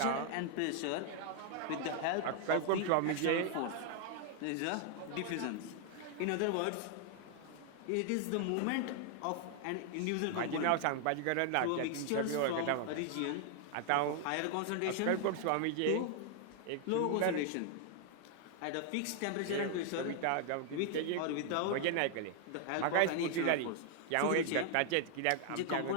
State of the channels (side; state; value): both; different; correlation 0.00